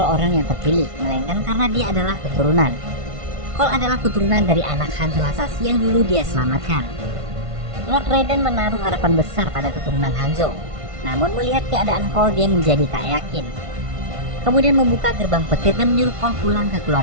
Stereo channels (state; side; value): late; left; 1.5 ms